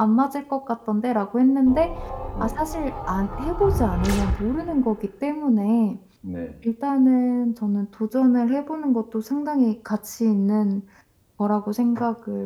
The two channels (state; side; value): identical; both; correlation 1.00